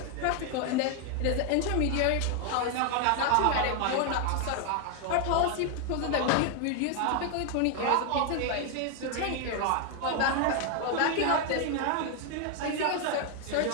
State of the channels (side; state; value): both; different; correlation 0.01